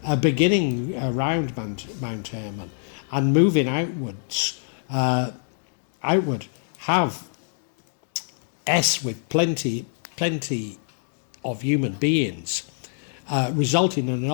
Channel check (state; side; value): silent; right; digital silence